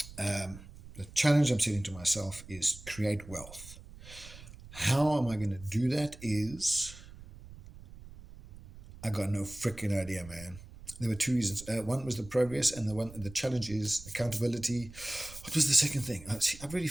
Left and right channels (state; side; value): noise; right; rumble, 17 dB below the sound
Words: the challenge I'm setting to myself is create wealth. How am I going to do that is, I got no freaking idea, man. There were two reasons. One was the progress, and the challenge is accountability. What was the second thing? I've already